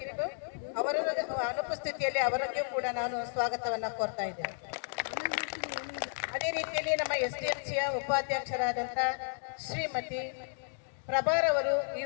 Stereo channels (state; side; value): silent; right; digital silence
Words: ಅವರ ಅನುಪಸ್ಥಿತಿಯಲ್ಲಿ ಅವರಿಗೂ ಕೂಡ ನಾನು ಸ್ವಾಗತವನ್ನು ಕೋರ್ತಾ ಇದ್ದೇನೆ. ಅದೇ ರೀತಿಯಲ್ಲಿ ನಮ್ಮ SDMCಯ ಉಪಾಧ್ಯಕ್ಷರಾದಂಥ ಶ್ರೀಮತಿ ಪ್ರಭಾರವರು ಈ